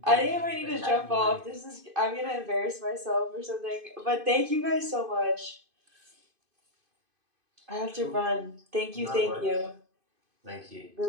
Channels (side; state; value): left; late; 2.5 ms